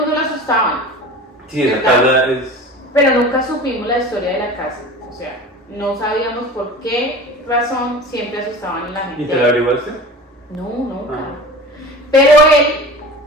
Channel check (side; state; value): both; normal; correlation 0.36